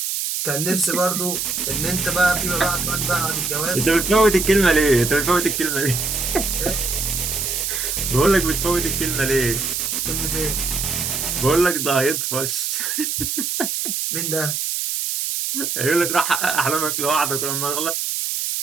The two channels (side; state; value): right; noise; hiss, 1 dB below the sound